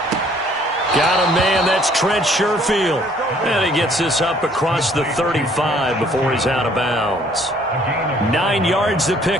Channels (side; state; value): both; normal; correlation 0.60